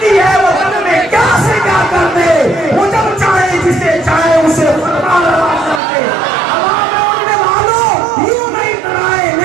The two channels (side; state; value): left; drops out; at 5.8 s